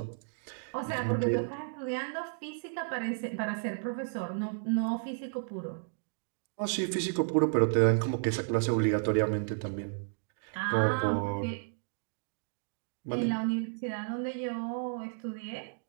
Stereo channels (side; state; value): left; silent; digital silence